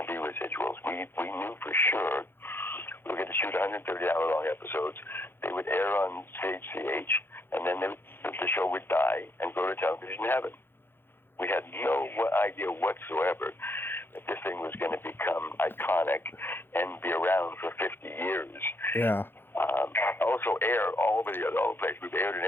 be residuals. We knew for sure we were going to shoot 130-hour-long episodes. They would air on CHCH, and then the show would die and go to television heaven. We had no idea whatsoever that this thing was going to become iconic and be around for 50 years. Yeah. Also air all over the place. We've aired in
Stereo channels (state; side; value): late; right; 0.10 ms